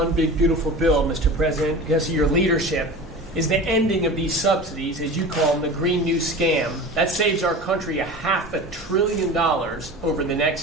Big Beautiful Bill, Mr. President, because of your leadership, is the ending of these subsidies, as you call them, the Green New Scam. That saves our country $500 billion over the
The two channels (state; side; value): normal; both; correlation 0.34